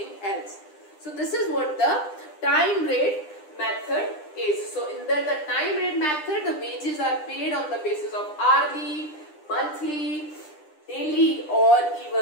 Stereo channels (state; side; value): late; right; 9.9 ms